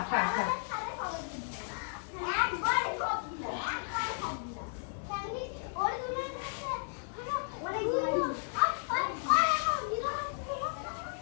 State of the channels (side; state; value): right; silent; digital silence